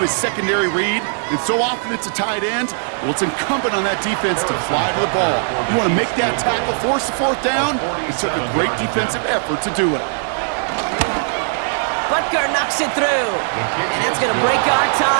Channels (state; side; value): silent; left; digital silence